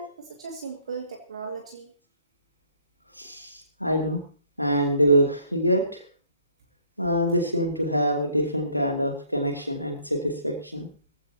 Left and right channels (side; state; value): both; inverted; correlation -0.62